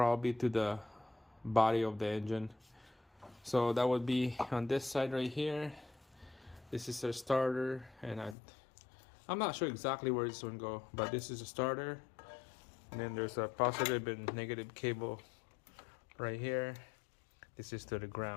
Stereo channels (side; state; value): right; drops out; at 8.3 s